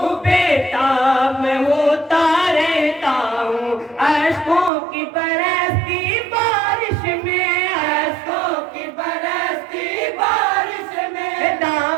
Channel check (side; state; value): left; drops out; at 4.7 s